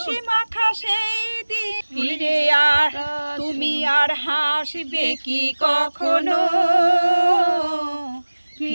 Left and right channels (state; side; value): inverted; both; correlation -1.00